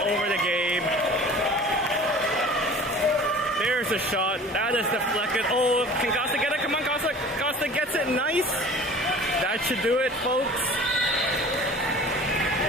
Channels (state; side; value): normal; both; correlation 0.43